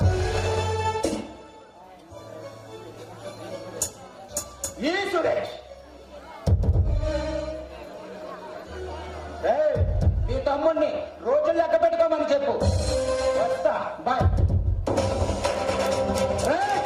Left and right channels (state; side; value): identical; both; correlation 1.00